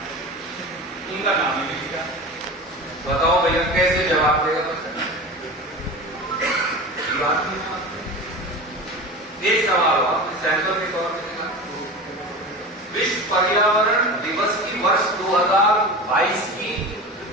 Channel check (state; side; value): normal; both; correlation 0.31